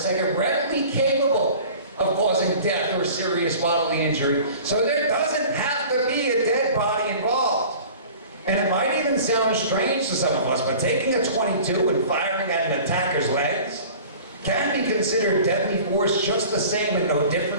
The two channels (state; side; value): inverted; both; correlation -0.43